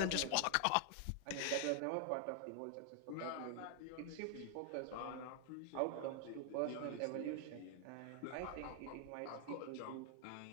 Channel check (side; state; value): both; different; correlation 0.00